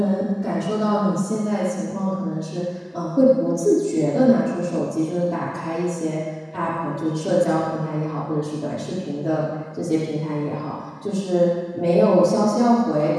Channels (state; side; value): identical; both; correlation 1.00